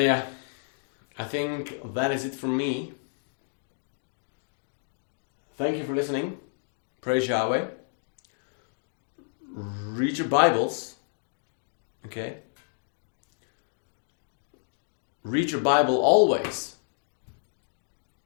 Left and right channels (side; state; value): right; silent; digital silence